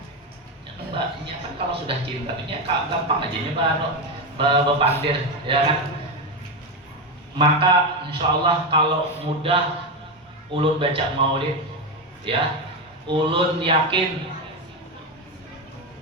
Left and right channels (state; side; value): normal; both; correlation 0.12